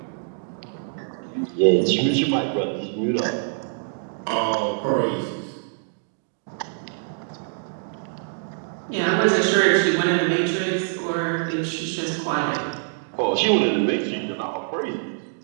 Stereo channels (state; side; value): silent; left; digital silence